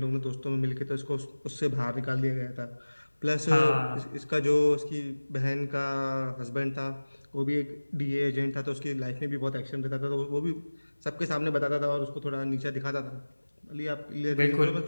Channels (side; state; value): both; inverted; correlation -1.00